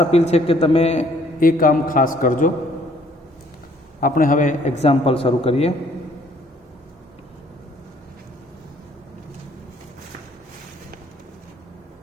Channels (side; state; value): both; normal; correlation 0.62